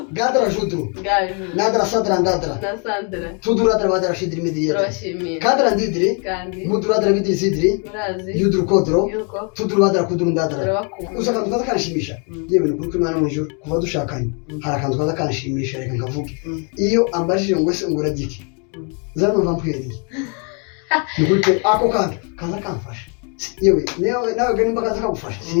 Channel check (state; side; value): quieter; right; 36.6 dB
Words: Gadara shuduru. Nandara sadra ndadara. Na Sandra. Fuduru adara badara shidiri midiri. Roshimi. Kadara ndidiri. Kandi. Muduru adara midiri sidiri. Urazi. Yuduru kodro. Yuko. Fuduru badara kuduru ndadara. Turabakumva. Usaka mutata kanshimisha. Yewe ni kuri mwana mwijuru kuva dushakanye. Harakantu kaza kanshimisha reka nkavuge. Iyo ambajije ngo se ngura giki. Zano vampiri. Nigute ako kandi kaza kamfasha. Yewe nawe gani mbaka zakagufasha.